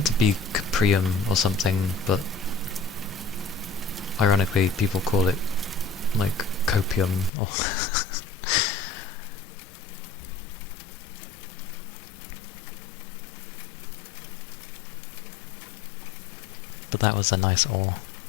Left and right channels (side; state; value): right; drops out; at 7.3 s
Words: to be Caprium or something, but ironically people call it like copium or but that was a nice ore.